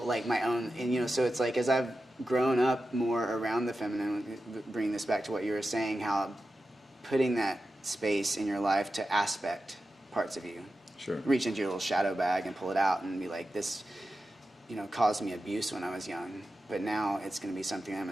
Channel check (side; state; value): both; normal; correlation 0.92